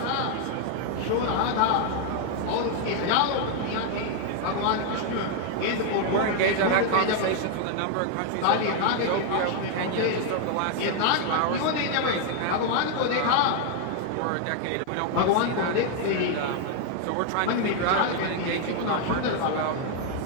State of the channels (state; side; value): different; both; correlation 0.00